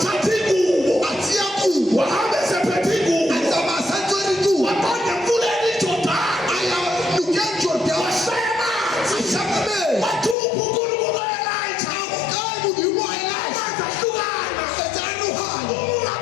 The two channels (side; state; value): right; drops out; at 10.4 s